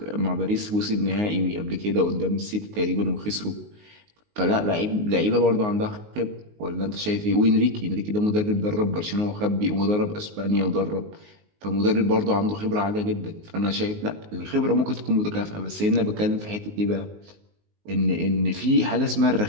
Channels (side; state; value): left; late; 19 ms